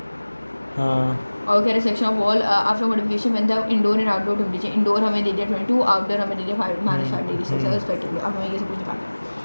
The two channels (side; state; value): both; inverted; correlation -1.00